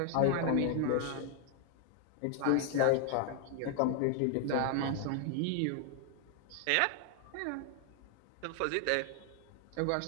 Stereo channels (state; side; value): different; both; correlation 0.00